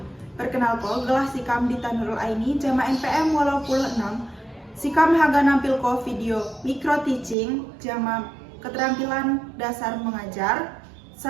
perkenalkan gelah sikam di Tanurul Aini jama NPM walau puluh 6. Sikam haga nampil ko video micro teaching jama keterampilan dasar mengajar.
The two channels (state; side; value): drops out; left; at 7.4 s